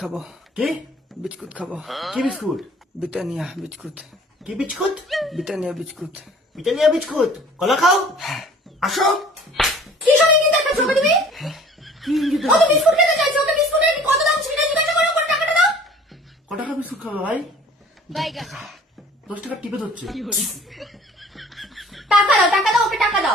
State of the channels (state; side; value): normal; both; correlation 0.50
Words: কি বিস্কুট খাবো। কি বিস্কুট? ব্রিটানিয়া বিস্কুট, কি biscuit? Britannia biscuit. Britannia biscuit. কলা খাও। আসো। কি সব ইঙ্গিত দেখাচ্ছ তুমি? কি ইঙ্গিত কত দেখাচ্ছ? বিস্কুট খেতে চাইছো? ওকে বিস্কুটের কত দাম সেটা জিজ্ঞাসা করো, কোন টাকাটা দাও। ক টাকা বিস্কুট খাবে ভাই? 10 টাকা টিপে ধরছে। টাকা দাও, টাকা দাও, ওকে টাকা